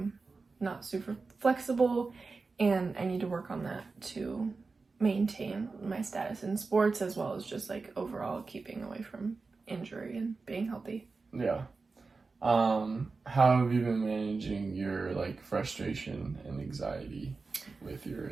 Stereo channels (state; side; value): quieter; left; 4.1 dB